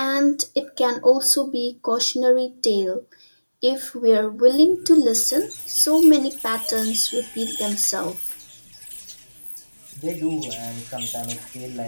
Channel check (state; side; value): inverted; both; correlation -1.00